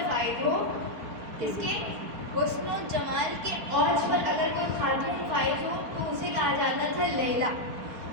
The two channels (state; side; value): late; left; 4.6 ms